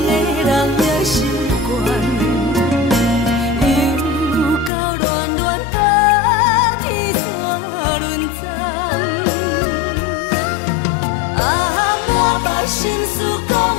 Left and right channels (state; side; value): drops out; right; at 4.7 s